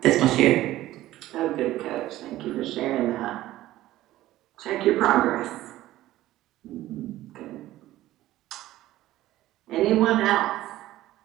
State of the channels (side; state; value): left; quieter; 15.3 dB